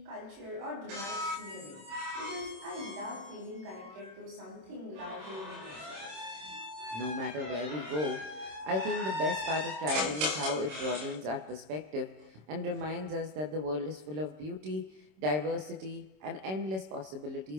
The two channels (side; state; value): left; late; 26 ms